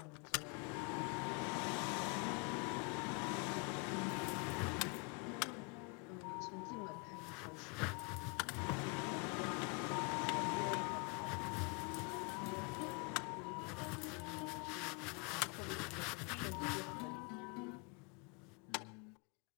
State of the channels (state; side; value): quieter; right; 33.6 dB